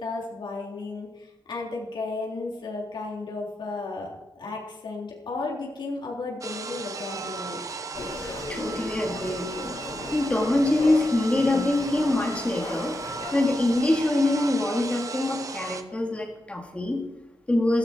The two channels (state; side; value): normal; both; correlation 0.87